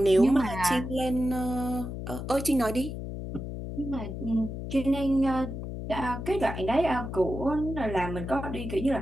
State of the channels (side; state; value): left; noise; hum, 7 dB below the sound